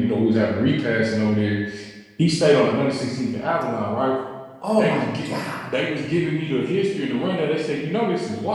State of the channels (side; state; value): both; identical; correlation 1.00